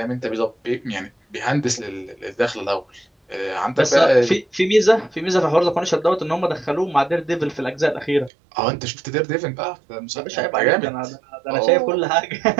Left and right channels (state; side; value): drops out; left; at 8.3 s